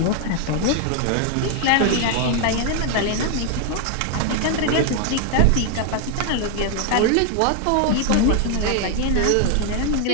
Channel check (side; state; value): both; different; correlation 0.00